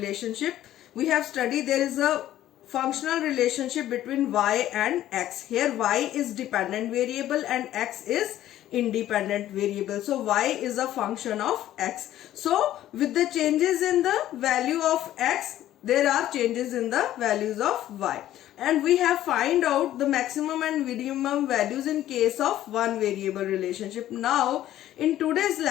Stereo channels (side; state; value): right; quieter; 13.1 dB